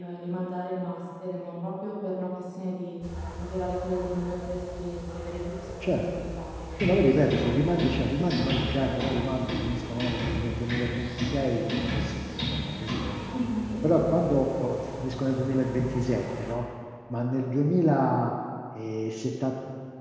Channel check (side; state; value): both; identical; correlation 1.00